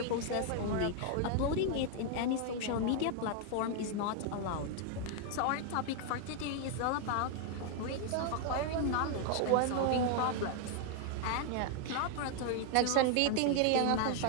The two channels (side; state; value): both; different; correlation 0.00